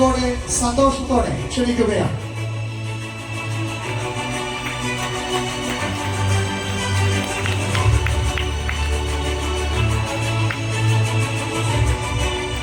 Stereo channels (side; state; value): both; identical; correlation 1.00